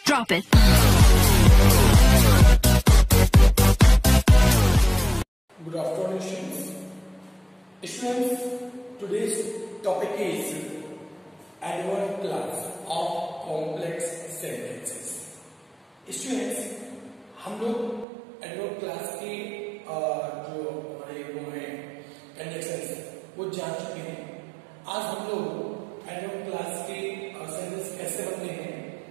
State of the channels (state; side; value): drops out; left; at 18.1 s